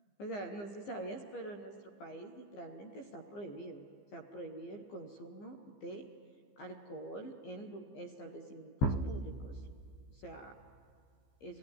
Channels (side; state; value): right; late; 15 ms